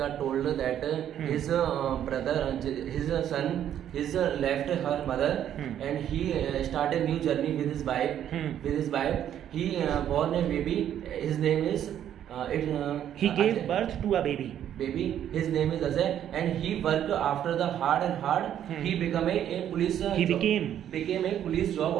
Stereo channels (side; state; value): left; quieter; 10.4 dB